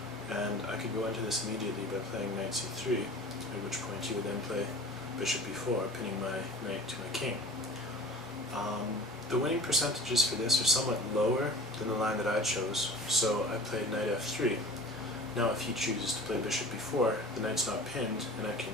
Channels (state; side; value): normal; both; correlation 0.42